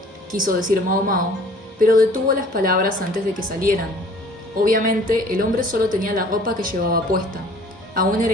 quiso decir Mao Mao, pero detuvo las palabras antes de que salieran. Obviamente, el hombre solo tenía la ropa que llevaba puesta. Aún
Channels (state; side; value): normal; both; correlation 0.52